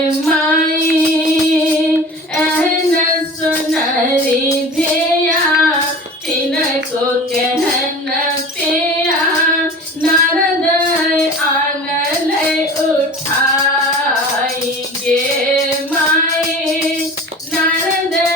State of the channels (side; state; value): both; normal; correlation 0.38